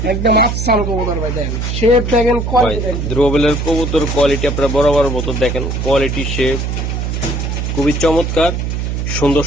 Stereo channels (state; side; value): noise; right; hum, 2 dB below the sound